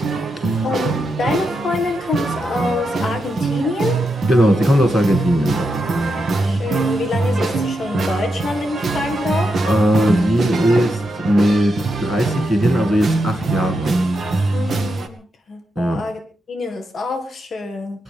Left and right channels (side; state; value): both; normal; correlation 0.85